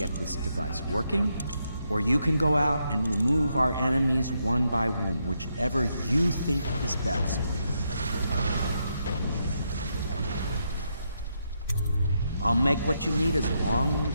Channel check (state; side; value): inverted; both; correlation -0.80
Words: this device working, or you can go out and remove our enemies one by one, whichever you think is best. I'll make what you need as long